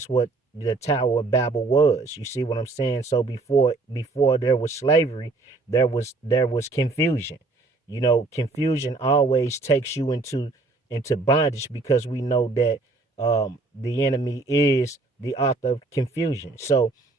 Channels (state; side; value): quieter; left; 3.5 dB